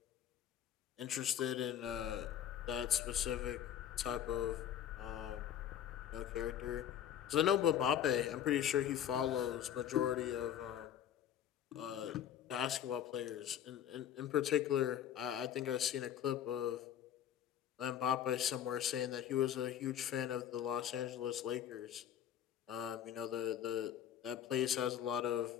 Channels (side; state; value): right; quieter; 10.0 dB